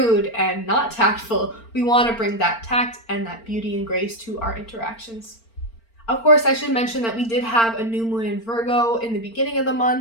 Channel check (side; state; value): right; late; 4.4 ms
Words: and not tactful. We want to bring that tact and that beauty and grace to our interactions. Of course, I should mention that we did have a new moon in Virgo in the beginning of the